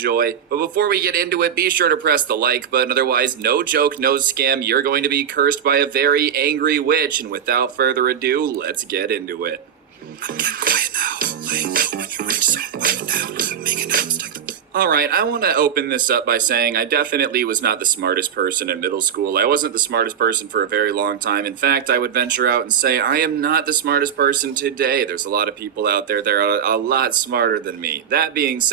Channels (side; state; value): left; quieter; 8.2 dB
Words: But before we get into it, be sure to press the like button. Otherwise, no joke, no scam, you're going to be cursed by a very angry witch. And without further ado, let's get into it. Get quiet now. Laying low when you reach so down. Make announced like the Alright, I want to open this up by saying I definitely was not the smartest person in middle school. I wasn't the smartest person for a very long time. In fact, I would venture out and say I am not the smartest person today. There's a lot of people out there that are a lot smarter than me. That being